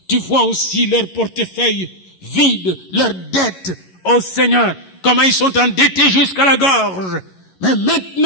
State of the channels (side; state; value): right; late; 11 ms